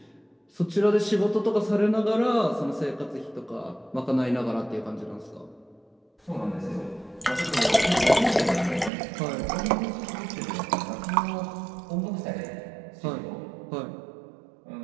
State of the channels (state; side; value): drops out; left; at 8.9 s